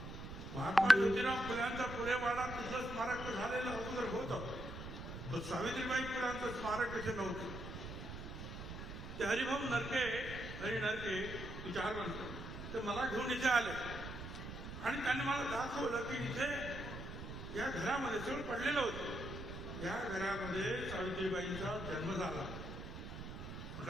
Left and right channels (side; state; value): right; noise; rumble, 9 dB below the sound